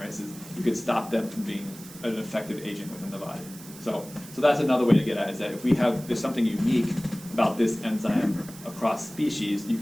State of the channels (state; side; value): noise; right; hiss, 17 dB below the sound